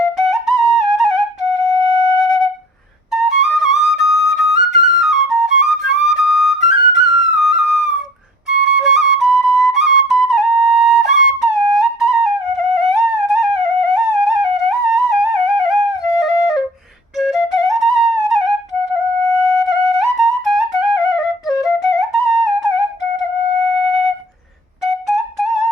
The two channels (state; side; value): normal; both; correlation 0.49